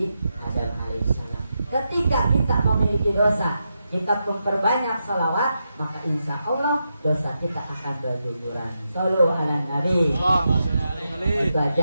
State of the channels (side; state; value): both; inverted; correlation -0.86